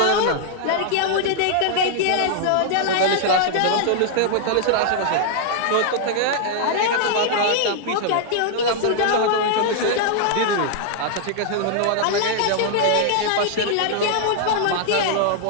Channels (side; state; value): both; different; correlation -0.01